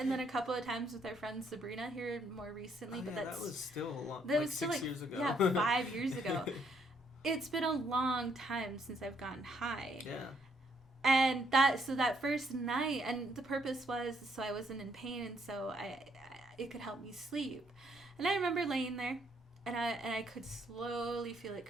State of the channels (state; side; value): normal; both; correlation 0.71